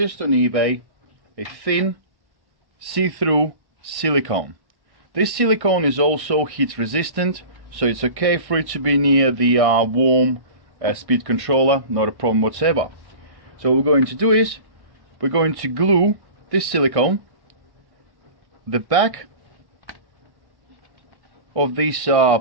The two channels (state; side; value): late; left; 1.6 ms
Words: on eBay a thin see-through silicone. This silicone is also heat resistant, so it's okay for it to be near the warm speed controller, not a problem whatsoever. So what we're going to do is we're going to glue this silicone the back of this